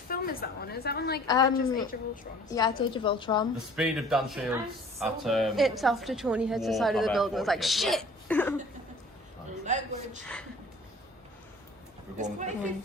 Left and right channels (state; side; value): normal; both; correlation 0.49